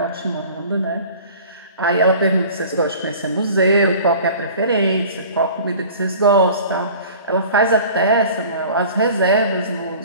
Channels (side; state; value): both; inverted; correlation -0.44